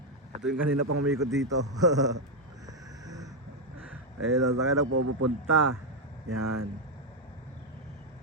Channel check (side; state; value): both; normal; correlation 0.02